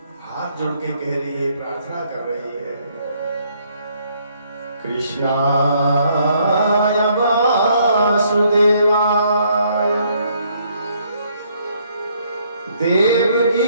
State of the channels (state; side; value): inverted; both; correlation -0.68